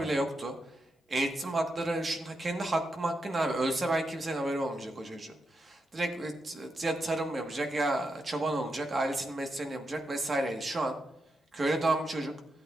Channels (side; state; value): both; normal; correlation 0.85